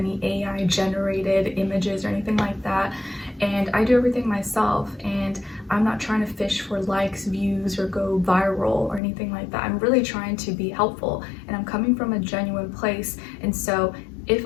AI generated images or anything like that. And I do everything myself, and I'm not trying to fish for likes, views, or go viral or anything like that. I'm really trying to be helpful, and I'm coming from a genuine place. And so if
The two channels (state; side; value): drops out; right; at 9.0 s